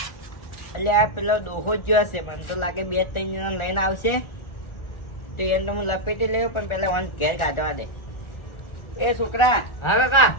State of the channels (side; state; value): right; late; 1.4 ms